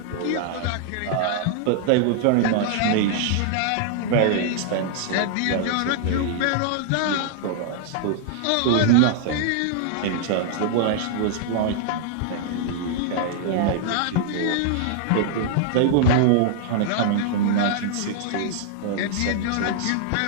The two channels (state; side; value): different; both; correlation -0.01